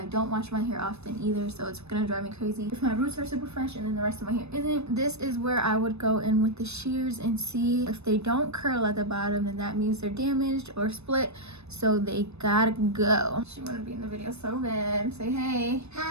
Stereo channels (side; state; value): left; late; 0.80 ms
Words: don't wash my hair often either, so it's gonna drive me crazy if my roots are super fresh and then the rest of my hair isn't. This is where I would go in with the shears and see if they don't curl at the bottom, then that means they're damaged or split, so they gotta go. She wanna be in the video so bad. Say hey.